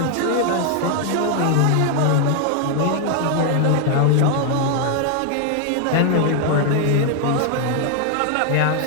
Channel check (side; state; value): both; different; correlation 0.00